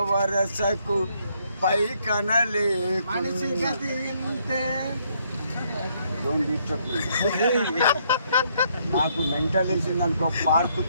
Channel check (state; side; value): inverted; both; correlation -0.71